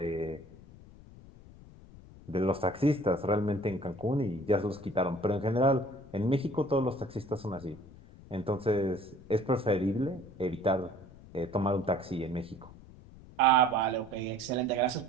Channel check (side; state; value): left; noise; rumble, 20 dB below the sound